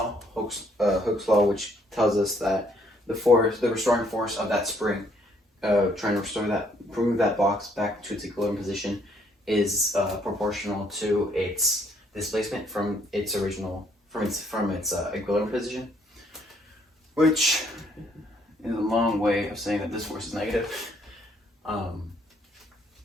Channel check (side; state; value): both; normal; correlation 0.66